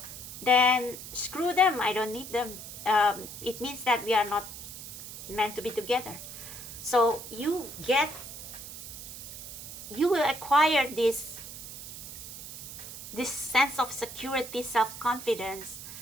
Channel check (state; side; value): noise; right; hiss, 11 dB below the sound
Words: then screw them, I don't need them. It means that we are not meant to be together. So you will acquire this sense of security, self-confidence